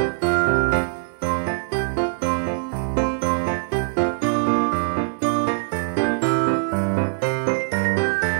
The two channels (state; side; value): silent; left; 60 dB below the other